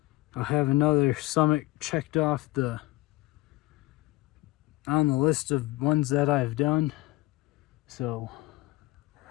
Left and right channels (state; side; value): quieter; right; 19.4 dB